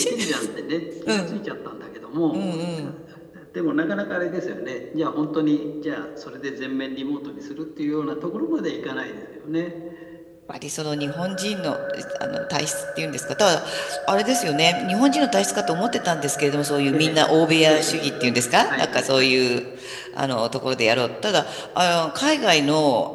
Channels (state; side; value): identical; both; correlation 1.00